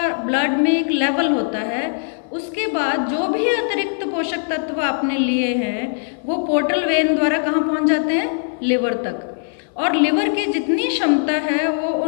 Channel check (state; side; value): silent; right; 59 dB below the other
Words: ब्लड में एक लेवल होता है। उसके बाद जो भी अतिरिक्त पोषक तत्व आपने लिए हैं वो पोर्टल वेन द्वारा कहाँ पहुँच जाते हैं, लिवर तक। और लिवर की जितनी क्षमता है वो